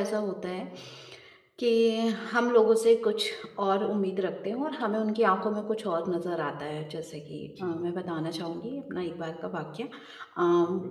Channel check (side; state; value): both; identical; correlation 1.00